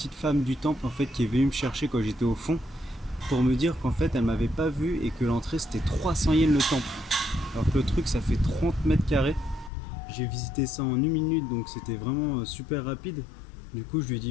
femme du temple en fait qui est venue me chercher quand j'étais au fond pour me dire qu'en fait elle m'avait pas vu et que l'entrée c'était 300 yens le temple, alors que le truc ça fait 30 mètres carrés. J'ai visité ça en 1 minute donc c'était vraiment super rapide. Du coup je lui ai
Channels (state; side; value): drops out; right; at 9.7 s